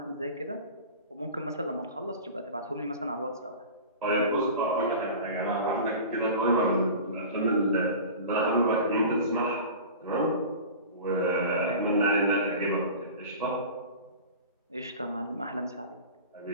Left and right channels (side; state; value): both; inverted; correlation -0.36